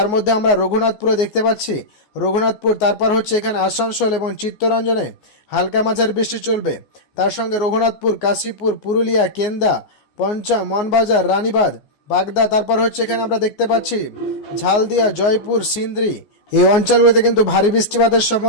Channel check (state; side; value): late; right; 14 ms